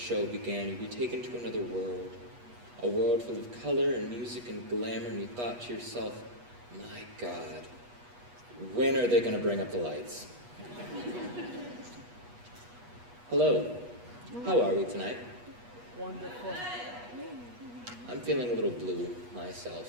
began, you'd be taken to another world. A world full of color and music and glamour, and you thought to yourself, my God, when are they going to bring up the lights? Hello, how are we tonight? Wonderful. I'm feeling a little blue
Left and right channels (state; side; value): late; left; 8.3 ms